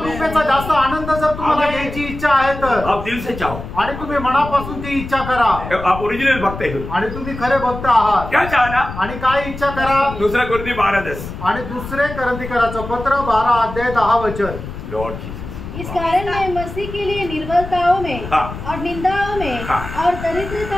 जास्त आनंद जर तुम्हाला घ्यायची इच्छा आहे तर आप दिल से चाहो, आणि तुम्ही मनापासून ती इच्छा करा, आप ओरिजिनल भक्त है, आणि तुम्ही खरे भक्त आहात। क्या चाहना? आणि काय इच्छा करा? दूसरा कोरिन्थियों 12:10, आणि दुसरे कोरिन्थियों पत्र 12:10 वचन। लॉर्ड जीसस, इस कारण मैं मसीह के लिए निर्बलताओं में और निंदाओं में और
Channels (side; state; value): left; noise; rumble, 10 dB below the sound